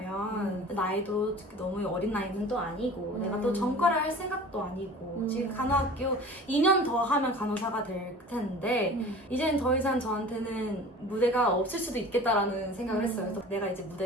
나이도 너무 어린 나이는 또 아니고 내가 또 전과를 할 생각도 아니고 지금 간호학교 2년 더 하면 간호사가 될 텐데 이제는 더 이상 저한테는 무대가 없을 수도 있겠다라는 생각을 했어요. 그래서 내가 이제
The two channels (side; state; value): both; normal; correlation 0.41